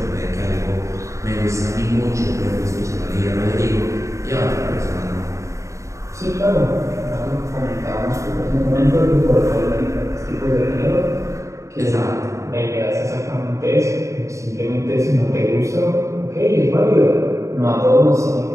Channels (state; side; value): late; left; 0.15 ms